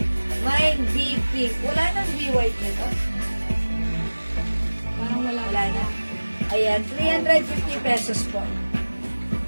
Mine B Pink. Wala nang B White nito. Parang wala. Wala na. Ayan, 350 pesos po.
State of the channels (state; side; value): inverted; both; correlation -1.00